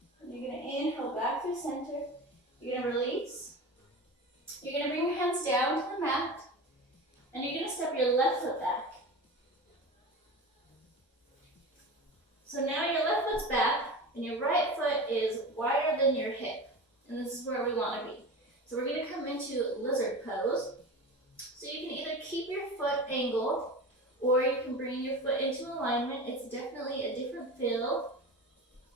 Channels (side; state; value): both; normal; correlation 0.30